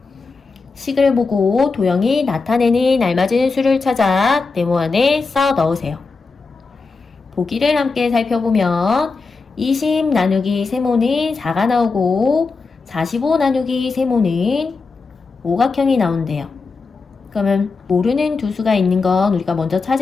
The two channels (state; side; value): quieter; right; 4.3 dB